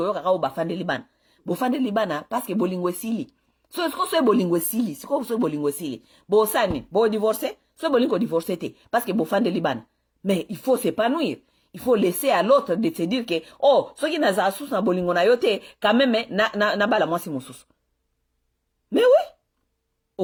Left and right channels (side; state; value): both; identical; correlation 1.00